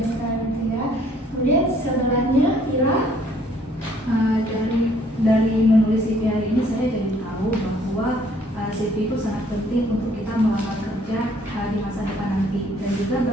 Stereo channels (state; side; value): normal; both; correlation 0.62